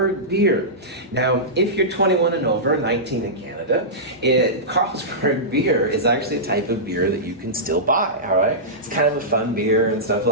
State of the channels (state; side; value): normal; both; correlation -0.16